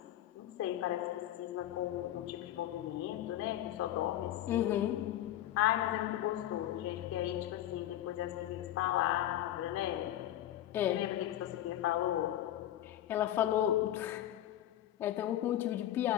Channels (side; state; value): right; quieter; 12.7 dB